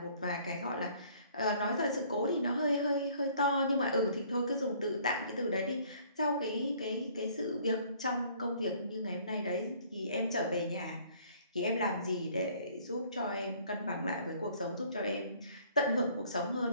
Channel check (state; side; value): inverted; both; correlation -0.58